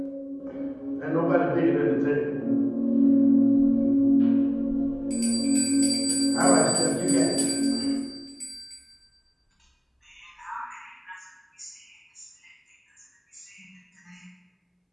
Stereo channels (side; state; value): both; identical; correlation 1.00